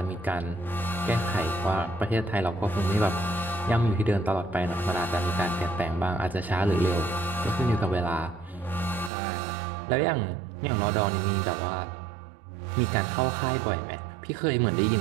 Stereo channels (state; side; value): drops out; left; at 9.1 s